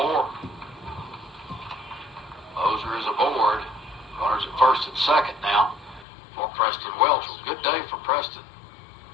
Moser is aboard. Runners at first and second now for Preston Welchel. Good day for Preston.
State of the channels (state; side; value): drops out; right; at 6.1 s